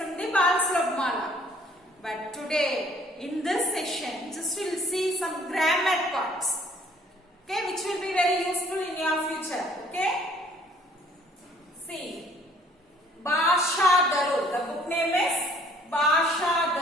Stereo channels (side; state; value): both; normal; correlation 0.58